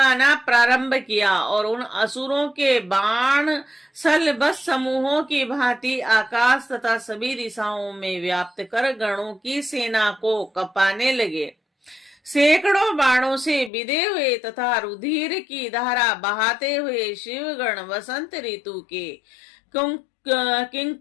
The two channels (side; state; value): right; drops out; at 13.7 s